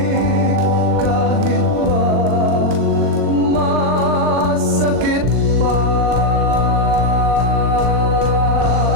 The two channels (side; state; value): left; late; 39 ms